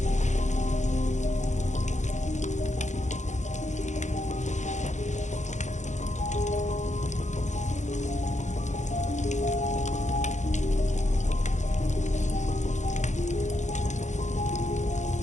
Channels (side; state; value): right; late; 0.35 ms